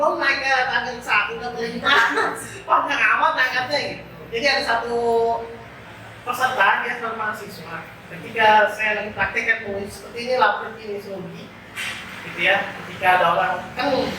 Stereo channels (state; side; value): identical; both; correlation 1.00